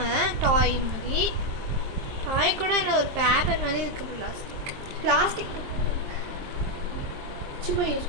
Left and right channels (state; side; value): late; left; 23 ms